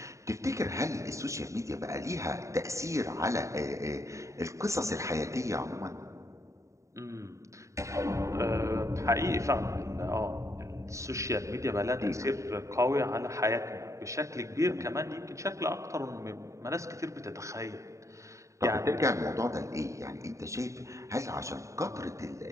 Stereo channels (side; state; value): left; late; 0.15 ms